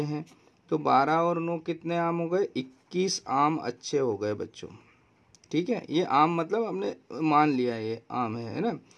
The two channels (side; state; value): both; identical; correlation 1.00